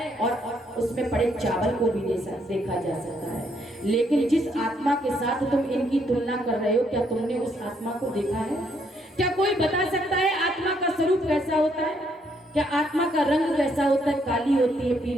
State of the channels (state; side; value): normal; both; correlation 0.72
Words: और उसमें पड़े चावल को भी देखा जा सकता है। लेकिन जिस आत्मा के साथ तुम इनकी तुलना कर रहे हो, क्या तुमने उस आत्मा को देखा है? क्या कोई बता सकता है आत्मा का स्वरूप कैसा होता है? क्या आत्मा का रंग कैसा होता है? काली होती है,